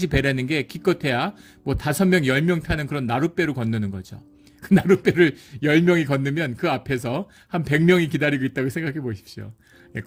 배라는 게 기껏해야 뭐 5명, 10명 타는 그런 나룻배로 건너는 거죠. 그 나룻배를 10명이 건너면 그 앞에서 한 100명이 기다리고 있다고 생각해 보십시오.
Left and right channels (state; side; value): identical; both; correlation 1.00